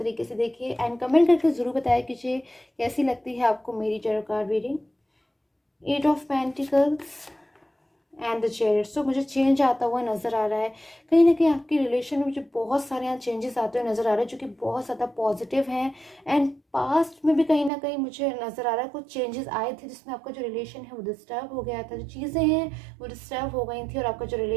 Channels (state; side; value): drops out; left; at 17.7 s